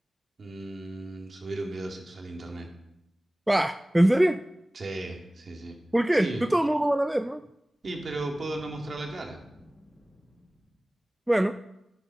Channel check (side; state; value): both; normal; correlation 0.98